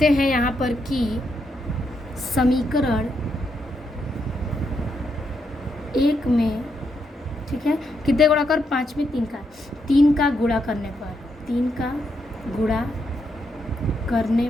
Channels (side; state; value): both; normal; correlation 0.80